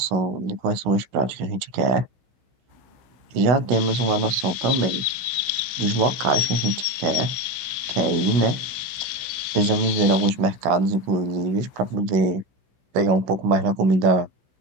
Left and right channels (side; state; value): left; late; 16 ms